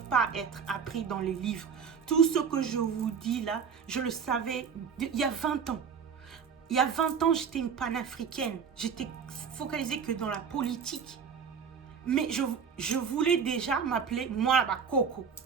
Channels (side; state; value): left; quieter; 6.6 dB